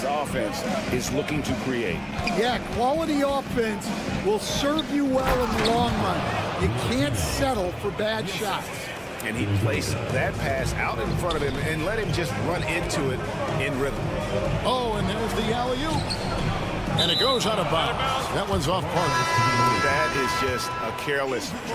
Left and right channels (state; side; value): identical; both; correlation 1.00